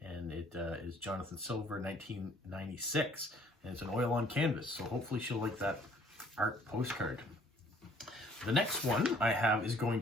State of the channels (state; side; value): normal; both; correlation 0.59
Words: it is Jonathan Silver, 1996, and it's an oil on canvas. So hopefully she'll like that art postcard. The next one I have is going